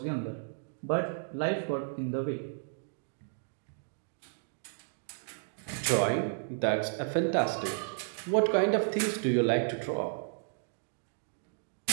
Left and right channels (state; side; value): silent; left; digital silence